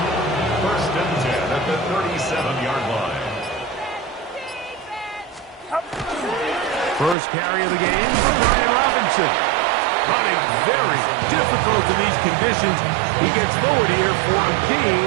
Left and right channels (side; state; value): left; drops out; at 7.2 s